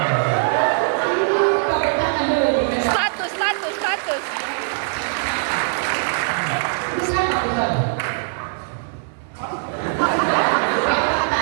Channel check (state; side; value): silent; left; 63 dB below the other